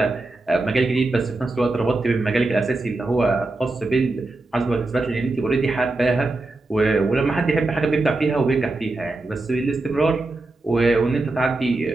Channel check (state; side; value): quieter; left; 3.1 dB